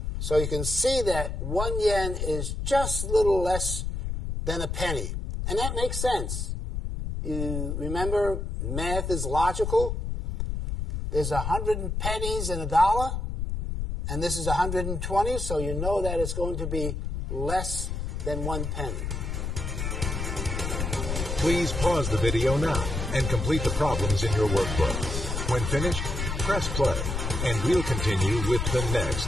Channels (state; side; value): noise; left; rumble, 3 dB below the sound